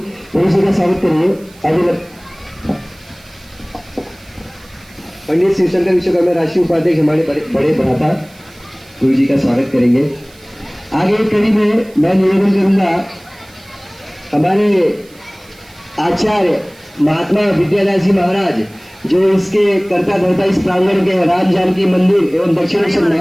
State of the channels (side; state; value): right; noise; hiss, 26 dB below the sound